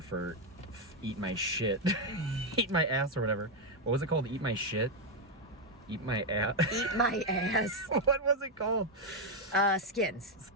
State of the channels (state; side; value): normal; both; correlation 0.03